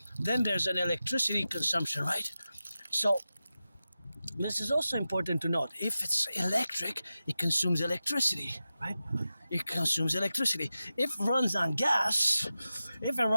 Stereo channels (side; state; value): both; inverted; correlation -0.93